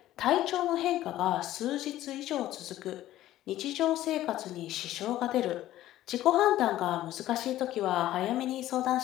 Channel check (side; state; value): right; quieter; 14.2 dB